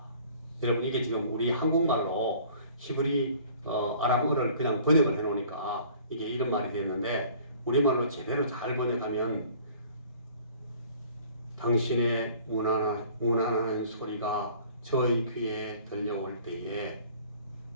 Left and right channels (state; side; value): inverted; both; correlation -0.52